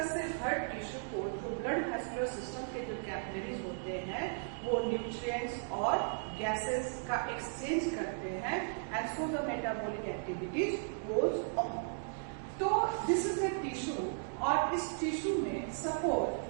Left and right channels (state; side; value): silent; left; digital silence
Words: से हर टिश्यू को जो ब्लड वेस्कुलर सिस्टम के जो कैपिलरीज होते हैं वो न्यूट्रिएंट्स और गैसेस का एक्सचेंज करते हैं, and so the metabolic activities goes on. तो दिस इज द टिश्यू, और इस टिश्यू में सपोज